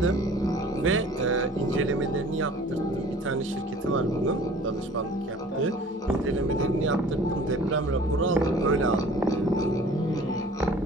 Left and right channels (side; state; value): both; normal; correlation 0.48